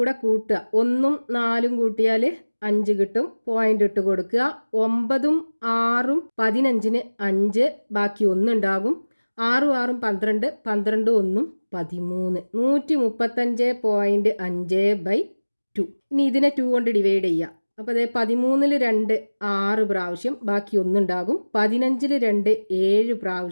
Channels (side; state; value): both; inverted; correlation -1.00